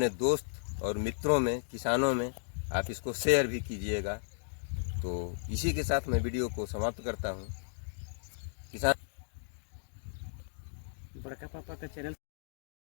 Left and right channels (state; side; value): silent; right; digital silence